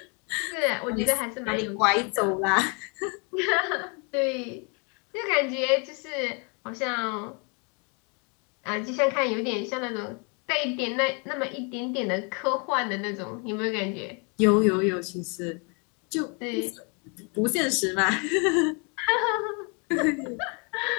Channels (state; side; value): quieter; right; 35.0 dB